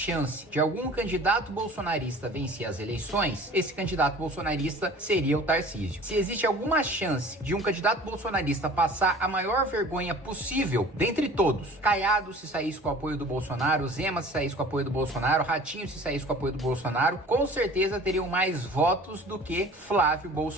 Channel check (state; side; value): normal; both; correlation 0.45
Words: de algum candidato bolsonarista vencer as eleições, esse candidato bolsonarista seria o Tarcísio. Se existe alguma chance de um candidato bolsonarista passar a maior vergonha possível dentre todos, Caiado se saísse com o apoio do Bolsonaro, Zema se saísse com o apoio do Bolsonaro, Ratinho se saísse com o apoio do Bolsonaro, com certeza teriam mais votos do que Flávio